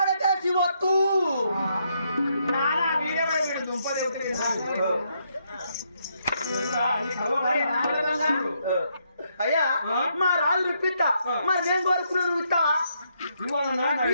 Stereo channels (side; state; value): both; inverted; correlation -0.76